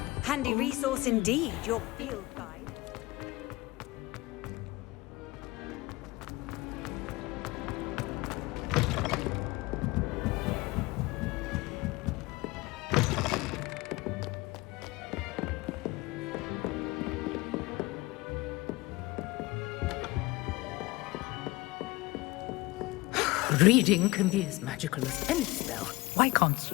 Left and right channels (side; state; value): right; quieter; 21.4 dB